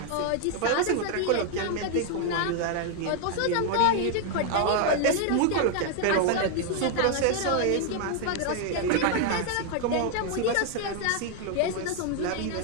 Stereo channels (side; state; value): both; different; correlation 0.00